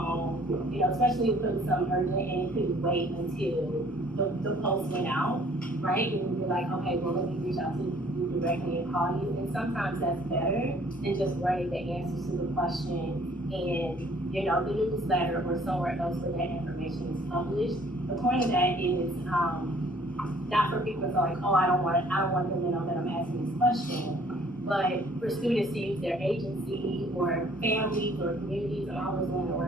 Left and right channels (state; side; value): normal; both; correlation 0.58